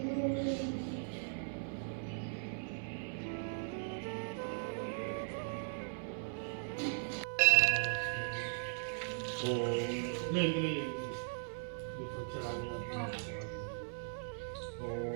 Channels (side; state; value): left; silent; 52 dB below the other